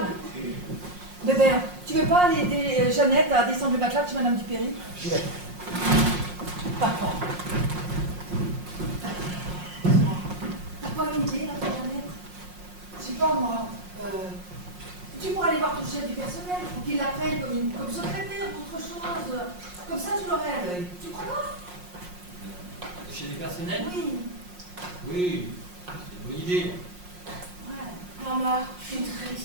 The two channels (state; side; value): late; left; 5.6 ms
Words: Bébert, tu veux pas aller aider Jeannette à descendre le matelas chez Madame Dupéry? J'y vais. Papa. T'as pas une idée, là, Jeannette? Je sais pas, moi. Tu pourrais aller voir ton chef du personnel pour qu'il l'appelle comme secrétaire ou autre chose. Comme ça, tu l'aurais à l'œil. Tu crois pas? Le chef du personnel? Oui. Oui, c'est une bonne idée. Ouais. Maman, je suis